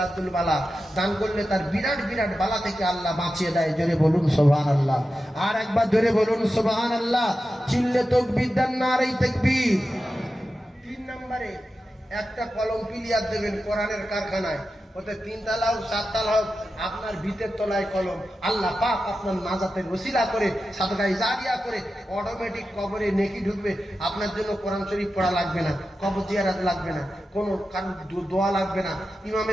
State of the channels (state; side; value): normal; both; correlation 0.92